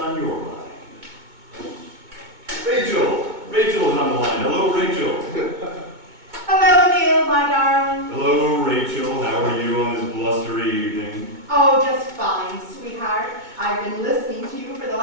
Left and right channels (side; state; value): left; late; 2.0 ms